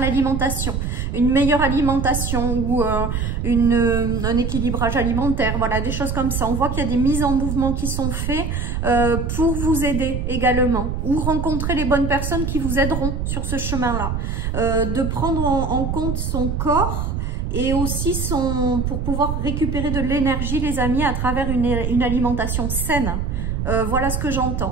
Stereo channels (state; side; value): noise; right; rumble, 2 dB below the sound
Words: une meilleure alimentation ou un équilibrage alimentaire, voilà, des choses comme ça. On voit qu'il y a des mises en mouvement qui sont faites pour vous aider également, ou rencontrer les bonnes personnes qui vous aideront sur ce chemin-là. De prendre en compte son corps et aussi pour pouvoir récupérer de l'énergie, les amis, à travers une alimentation saine. Voilà ce que